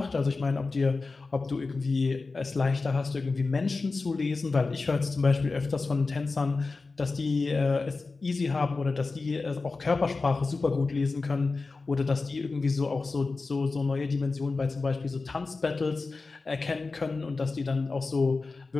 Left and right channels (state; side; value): quieter; right; 3.9 dB